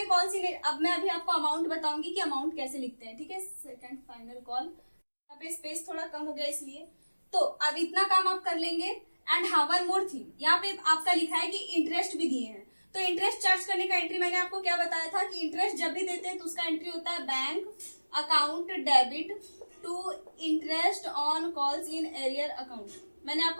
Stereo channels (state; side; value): inverted; both; correlation -1.00